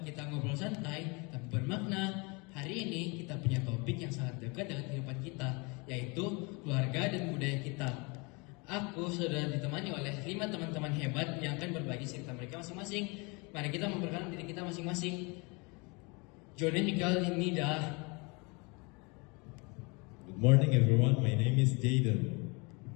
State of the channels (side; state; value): right; quieter; 29.4 dB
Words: kita ngobrol santai tapi bermakna. Hari ini kita punya topik yang sangat dekat dengan kehidupan kita, yaitu keluarga dan budaya kita. Aku sudah ditemani oleh 5 teman-teman hebat yang akan berbagi cerita mereka masing-masing. Mari kita memperkenalkan diri kita masing-masing. Johnny Mikal Nida. Good morning, everyone. My name is Jaden.